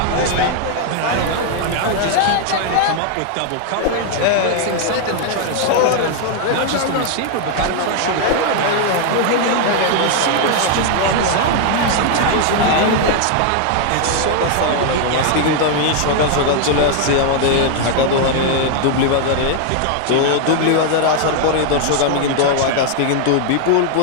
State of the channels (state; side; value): different; both; correlation 0.00